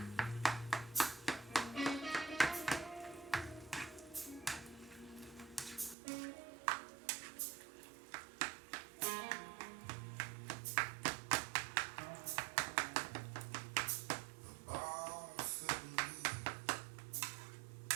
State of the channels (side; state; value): left; drops out; at 6.0 s